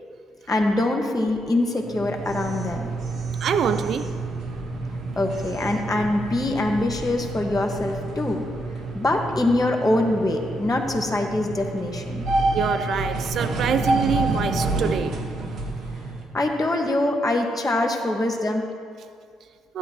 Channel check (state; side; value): normal; both; correlation 0.79